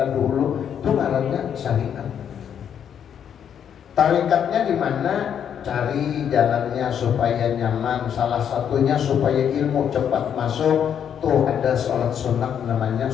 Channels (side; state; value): right; quieter; 8.6 dB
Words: dulu, itu ngarannya syariat. Tarikatnya di mana? Cari jalannya supaya nyaman. Salah satunya supaya ilmu cepat masuk. Tuh ada sholat sunat namanya